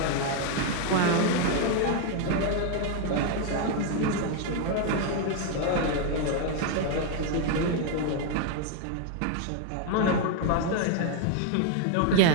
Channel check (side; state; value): both; different; correlation 0.01